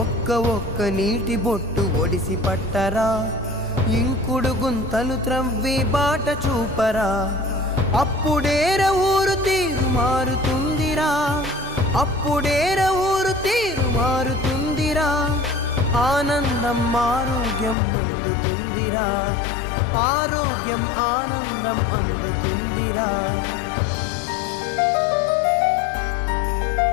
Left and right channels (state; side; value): drops out; right; at 17.8 s